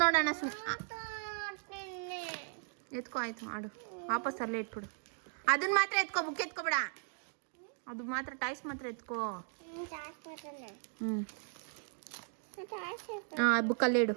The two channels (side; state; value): left; silent; 53 dB below the other